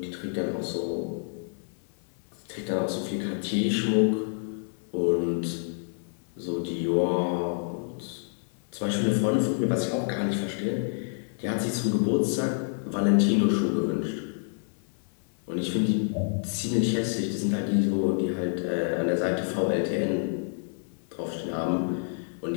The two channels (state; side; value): silent; right; 59 dB below the other